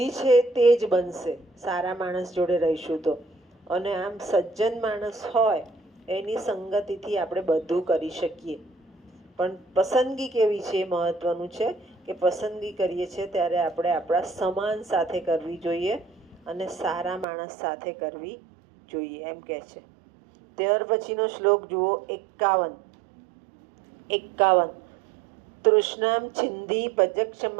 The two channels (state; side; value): drops out; left; at 17.2 s